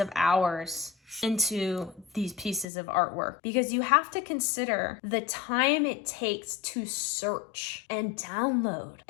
hours into these pieces of artwork, because you have to consider the time it takes to search and download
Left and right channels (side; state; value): right; drops out; at 2.7 s